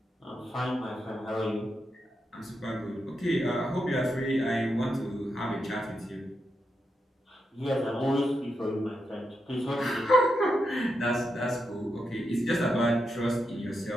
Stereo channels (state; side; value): normal; both; correlation 0.85